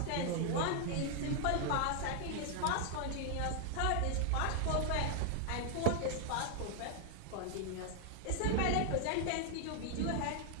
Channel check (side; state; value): both; different; correlation 0.00